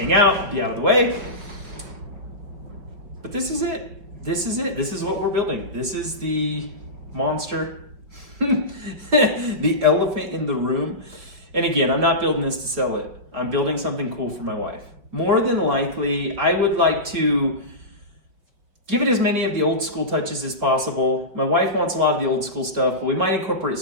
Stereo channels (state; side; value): late; left; 5.4 ms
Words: out, be out of the way. But this is it. This is it. This is what we're building. This is the monster, the elephant in the room. And again, I'm not building this to sell it. I'm building something cool for my wife. More than likely, I would like to give it as many of the old school touches as possible. My wife wants a lot of the old school stuff, but we might incorporate